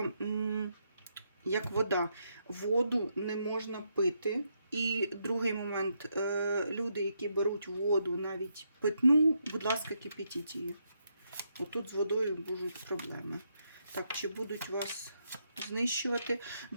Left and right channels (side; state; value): both; inverted; correlation -0.79